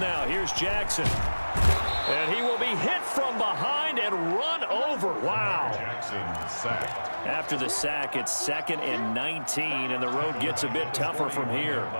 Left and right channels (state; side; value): inverted; both; correlation -1.00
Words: here's Jackson. And he will be hit from behind and run over. Wow. Jackson sacked. After the sack, it's 2nd and 19, and the road gets a bit tougher from here.